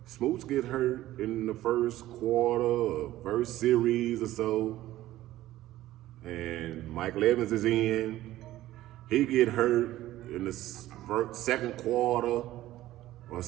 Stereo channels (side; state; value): left; quieter; 15.0 dB